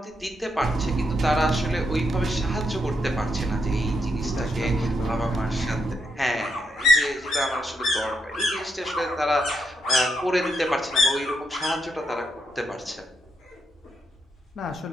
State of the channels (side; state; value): both; normal; correlation 0.80